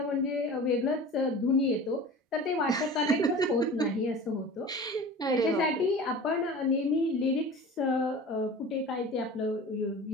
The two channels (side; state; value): both; normal; correlation 0.38